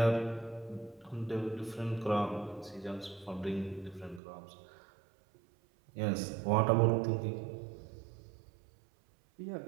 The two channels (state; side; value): drops out; left; at 4.2 s